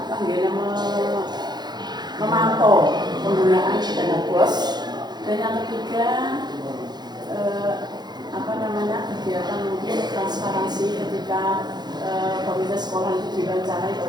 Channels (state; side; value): late; left; 0.20 ms